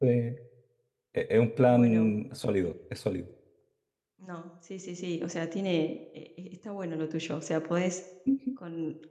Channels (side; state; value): both; identical; correlation 1.00